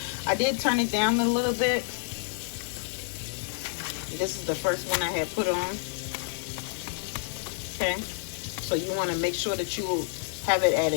I did turn it down a little bit. This is the first one I had put on. Okay, so you want to make sure that you have it at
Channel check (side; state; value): right; silent; digital silence